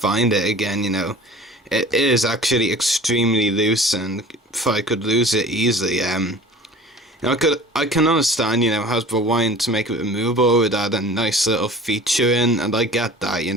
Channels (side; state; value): both; normal; correlation 0.42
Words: it again, you know. It is actually extremely loose, and if I could lose it easily, you know, I can understand, you know, Hasbro wanting to make it removable with add a nice little feature in, and I get that, you